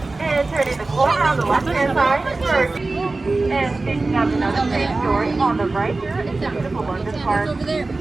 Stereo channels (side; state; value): left; quieter; 3.4 dB